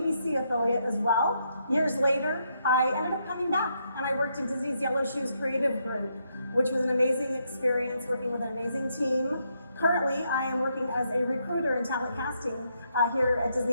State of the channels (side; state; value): both; inverted; correlation -0.77